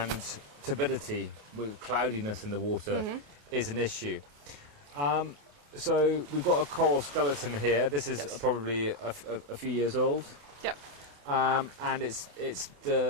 turbidity with cloudiness in the water is an issue. So we've got a coral skeleton here. This is probably a few years old. Yep. And it's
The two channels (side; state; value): left; late; 28 ms